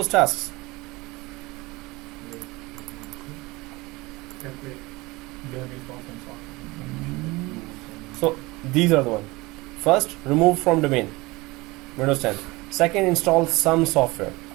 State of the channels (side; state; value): left; quieter; 22.4 dB